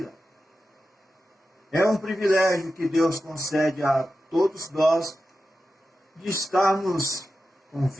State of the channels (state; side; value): normal; both; correlation 0.92